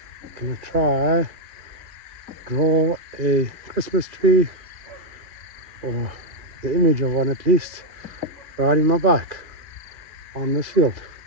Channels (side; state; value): left; late; 2.4 ms